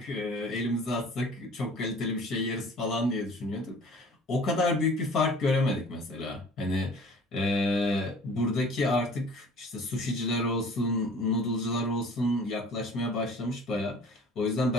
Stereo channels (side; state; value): both; normal; correlation 0.48